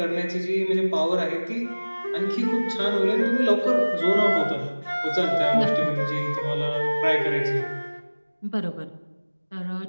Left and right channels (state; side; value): inverted; both; correlation -1.00